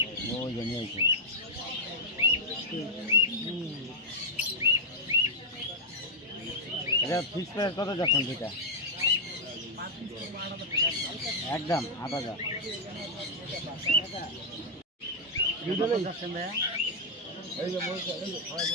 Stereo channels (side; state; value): both; normal; correlation -0.03